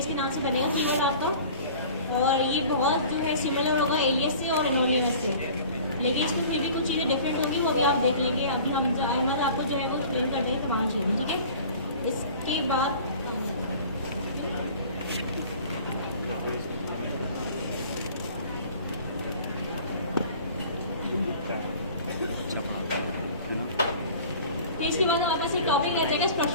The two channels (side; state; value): both; inverted; correlation -0.45